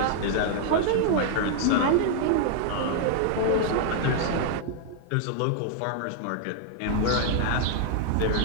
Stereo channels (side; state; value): both; different; correlation 0.00